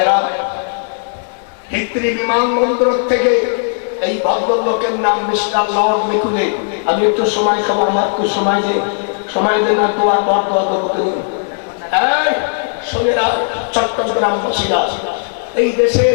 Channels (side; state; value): right; silent; 69 dB below the other